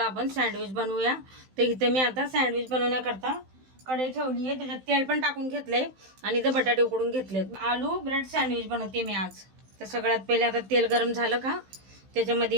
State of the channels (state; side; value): late; left; 15 ms